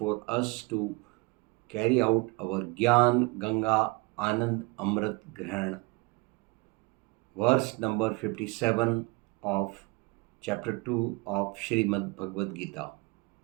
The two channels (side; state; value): left; quieter; 27.3 dB